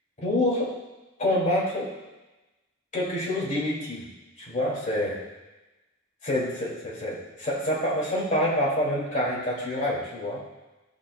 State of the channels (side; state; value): both; normal; correlation 0.25